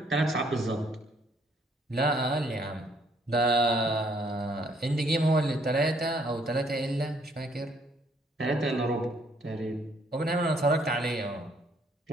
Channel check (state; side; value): normal; both; correlation 0.66